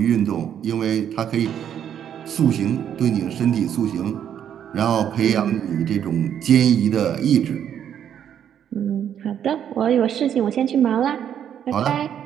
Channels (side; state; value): left; quieter; 9.3 dB